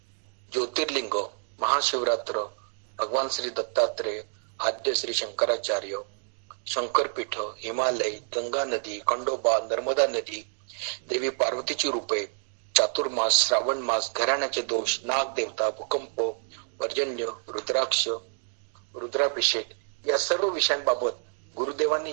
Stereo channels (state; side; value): silent; left; digital silence